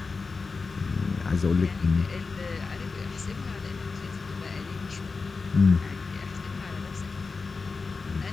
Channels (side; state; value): right; quieter; 4.4 dB